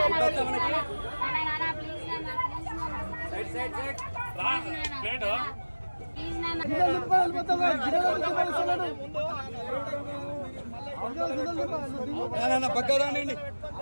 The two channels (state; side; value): inverted; both; correlation -1.00